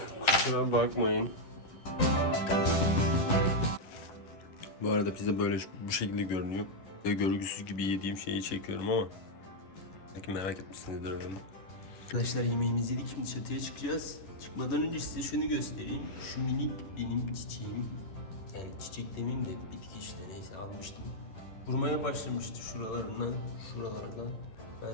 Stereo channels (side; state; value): right; late; 11 ms